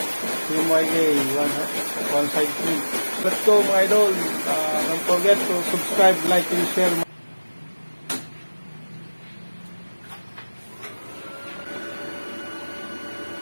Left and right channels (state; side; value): inverted; both; correlation -1.00